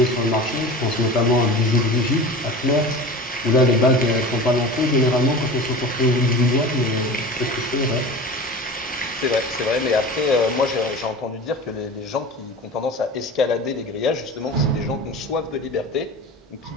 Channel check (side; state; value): both; normal; correlation 0.34